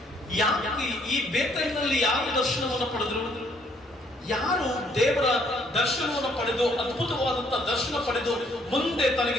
ಯಾಕೆ ಈ ಬೇತೇಲಿನಲ್ಲಿ ಯಾರು ದರ್ಶನವನ್ನು ಪಡೆದ್ರು? ಯಾರು ದೇವರ ದರ್ಶನವನ್ನು ಪಡೆದು, ಅದ್ಭುತವಾದಂತ ದರ್ಶನ ಪಡೆದು, ಮುಂದೆ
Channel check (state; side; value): normal; both; correlation 0.65